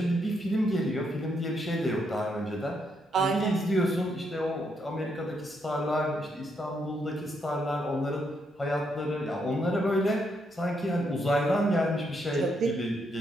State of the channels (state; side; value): normal; both; correlation 0.77